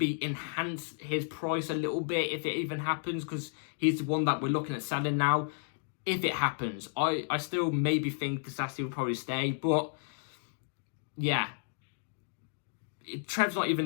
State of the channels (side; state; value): right; silent; digital silence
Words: enhance his price a little bit, if it even happens, because he's the one that we're looking at selling now. If it happens, I still maybe think Disasi will probably stay, but yeah, Trev's not